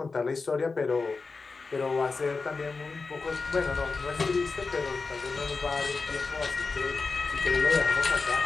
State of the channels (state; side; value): quieter; right; 4.2 dB